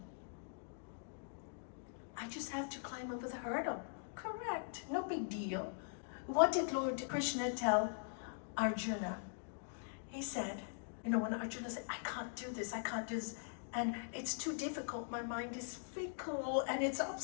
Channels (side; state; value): right; silent; digital silence